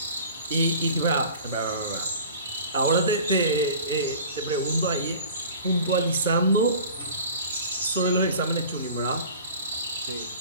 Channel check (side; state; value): both; inverted; correlation -0.42